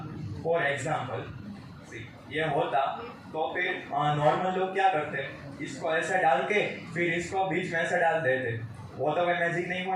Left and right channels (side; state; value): both; identical; correlation 1.00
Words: फॉर एग्जांपल ये होता, तो फिर नॉर्मल लोग क्या करते, इसको ऐसा डाल के फिर इसको बीच में ऐसा डाल देते। वो तो मैं मैजिक नहीं